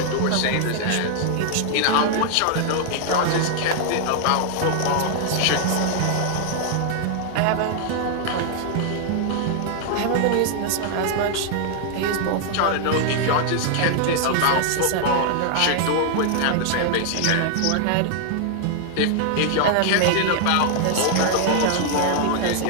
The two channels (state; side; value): different; both; correlation 0.00